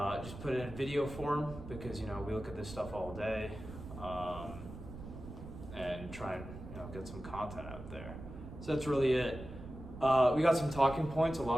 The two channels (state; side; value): noise; right; rumble, 12 dB below the sound